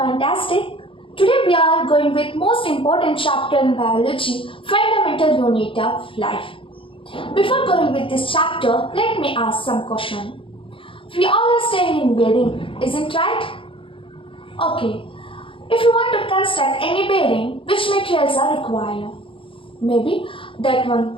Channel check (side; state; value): right; late; 0.25 ms